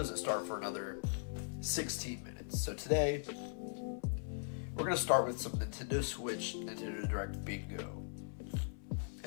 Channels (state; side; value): silent; right; 51 dB below the other